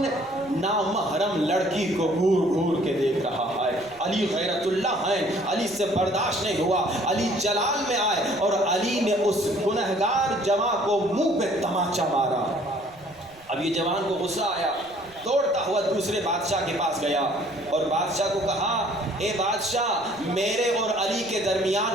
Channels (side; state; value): right; noise; rumble, 26 dB below the sound